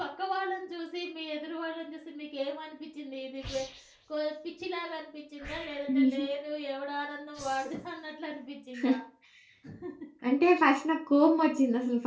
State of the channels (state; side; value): identical; both; correlation 1.00